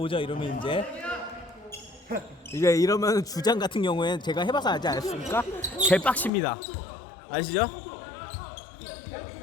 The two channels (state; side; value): drops out; right; at 6.3 s